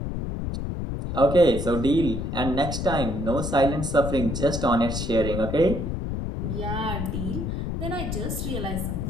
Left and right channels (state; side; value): noise; left; rumble, 3 dB below the sound